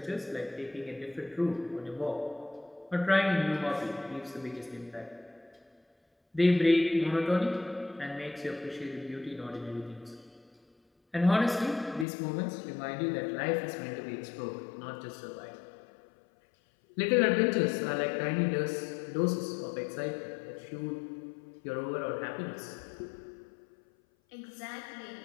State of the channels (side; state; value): right; drops out; at 12.1 s